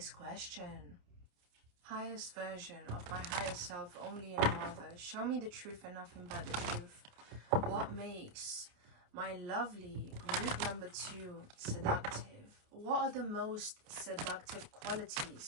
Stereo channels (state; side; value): late; left; 28 ms